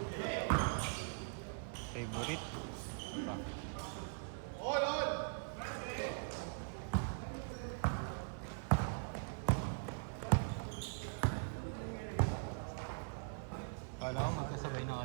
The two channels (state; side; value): silent; left; 50 dB below the other